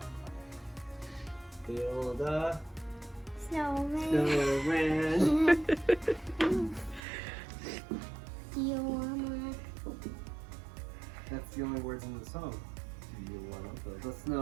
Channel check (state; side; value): drops out; left; at 7.0 s